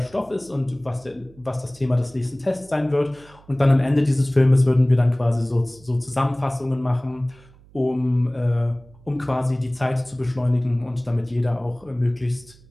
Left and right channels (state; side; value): noise; right; hum, 26 dB below the sound